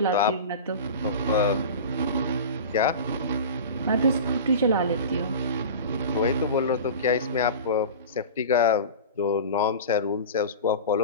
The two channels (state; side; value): inverted; both; correlation -0.32